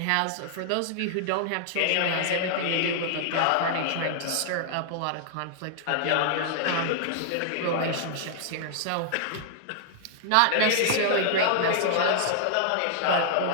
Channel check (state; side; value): different; both; correlation -0.01